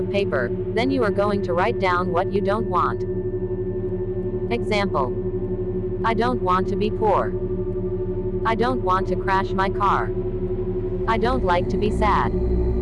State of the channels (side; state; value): both; identical; correlation 1.00